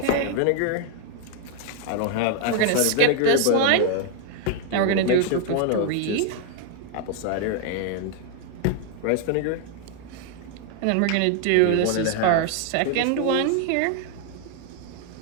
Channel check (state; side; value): different; both; correlation 0.00